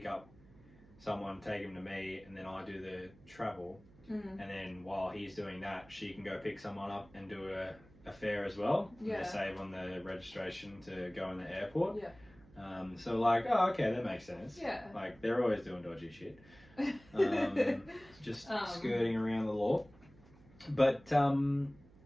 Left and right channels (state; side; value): noise; right; hum, 24 dB below the sound